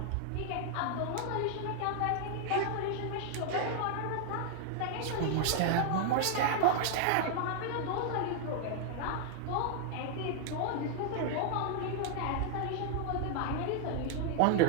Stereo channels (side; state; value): both; different; correlation 0.00